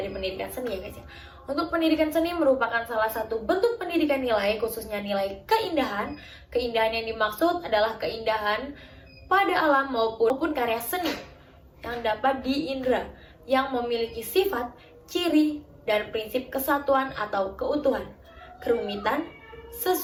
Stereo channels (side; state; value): both; identical; correlation 1.00